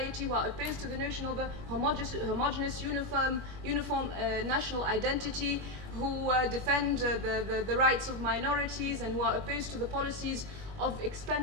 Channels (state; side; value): late; left; 21 ms